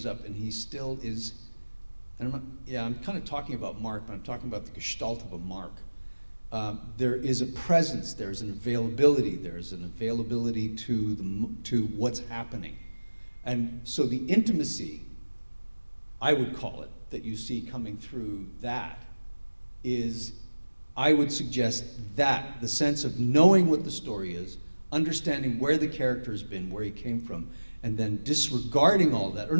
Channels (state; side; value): inverted; both; correlation -1.00